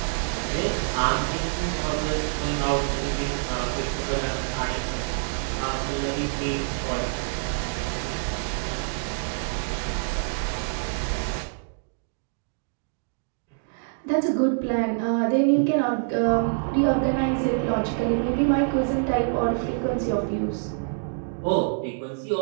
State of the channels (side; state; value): left; silent; digital silence